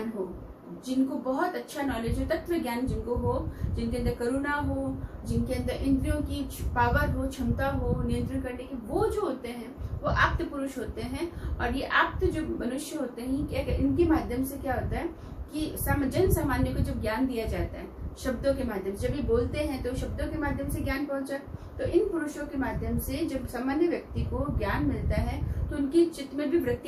हो, जिनको बहुत अच्छा नॉलेज हो, तत्व ज्ञान जिनको हो, जिनके अंदर करुणा हो, जिनके अंदर इंद्रियों की पावर हो, क्षमता हो नियंत्रण करने की, वो जो होते हैं वो आप्त पुरुष होते हैं। और ये आप्त जो मनुष्य होते हैं, क्या इनके माध्यम से क्या होता है कि जन सामान्य को जब ज्ञान दिया जाता है शब्दों के माध्यम से, जब ये बोलते हैं तो शब्दों के माध्यम से ज्ञान पहुंचा, तो इन पुरुषों के माध्यम से जब सामान्य व्यक्ति को ज्ञान मिलता है तो उनकी चित्त में भी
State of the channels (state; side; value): identical; both; correlation 1.00